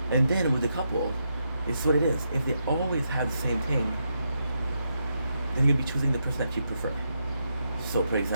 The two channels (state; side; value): inverted; both; correlation -0.82